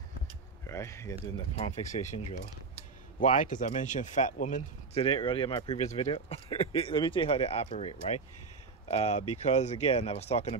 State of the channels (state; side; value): quieter; left; 4.6 dB